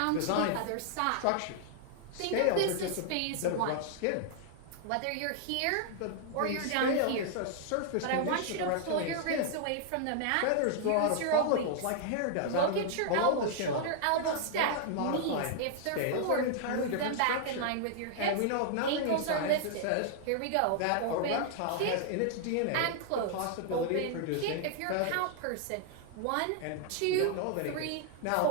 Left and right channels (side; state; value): both; different; correlation -0.01